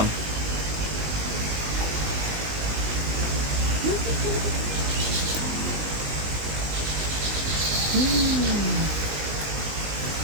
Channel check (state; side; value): late; left; 19 ms